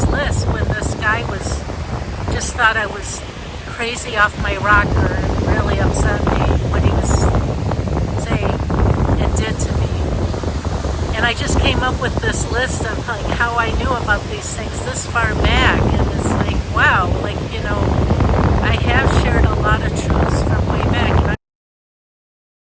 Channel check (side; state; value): both; identical; correlation 1.00